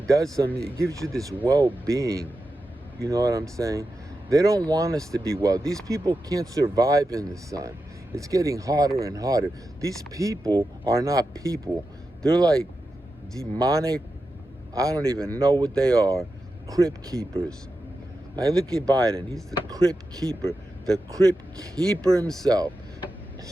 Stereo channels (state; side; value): normal; both; correlation 0.90